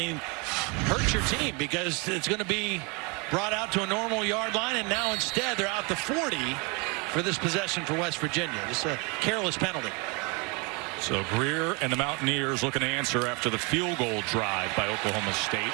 hurts your team because it's going to be brought out to a normal yard line, and now instead they're out the 40 for this possession for West Virginia. Just a careless penalty. So Greer and the Mountaineers looking to answer after the field goal drive by Oklahoma State,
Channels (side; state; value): left; quieter; 30.4 dB